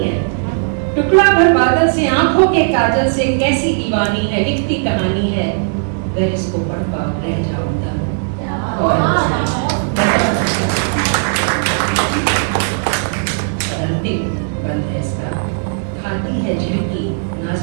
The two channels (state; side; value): silent; left; digital silence